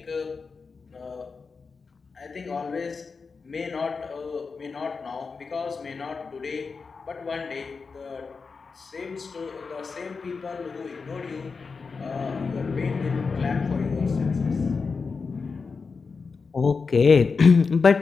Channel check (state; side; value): quieter; right; 4.8 dB